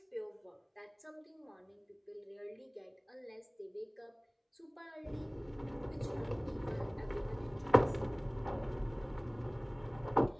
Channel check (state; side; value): identical; both; correlation 1.00